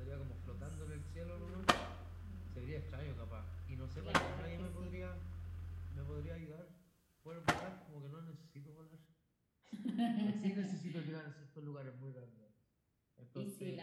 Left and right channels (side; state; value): both; identical; correlation 1.00